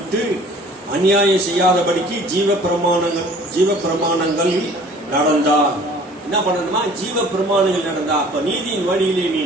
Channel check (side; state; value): both; normal; correlation 0.50